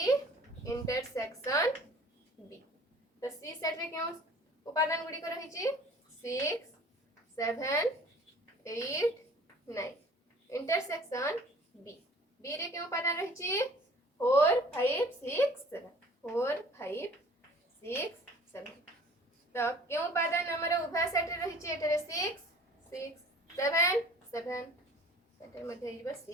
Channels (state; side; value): normal; both; correlation 0.49